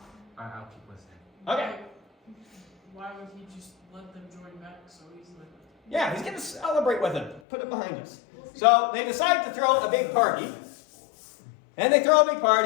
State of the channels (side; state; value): right; drops out; at 7.4 s